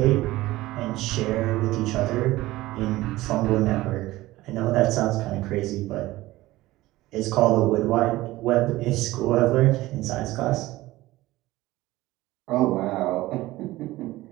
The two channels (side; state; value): left; quieter; 17.7 dB